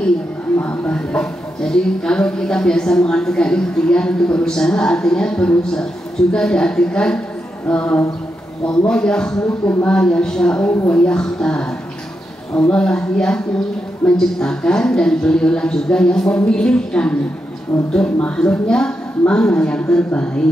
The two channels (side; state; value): both; normal; correlation 0.85